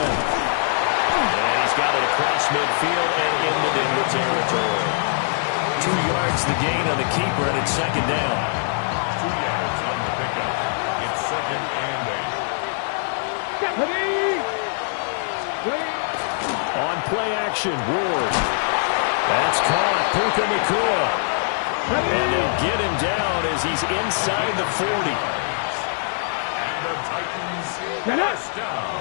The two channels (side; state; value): right; silent; digital silence